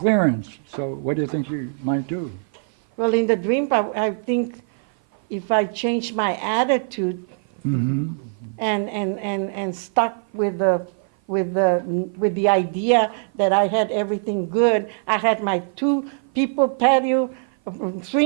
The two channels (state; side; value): silent; left; 55 dB below the other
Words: So what do you think you might do? Well, in the dream, I think if I change my attitude and stuck with the idea that I had everything good, I had my 2-people patio